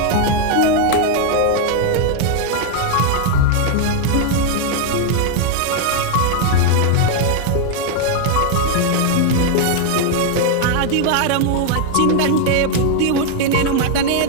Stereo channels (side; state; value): both; different; correlation 0.00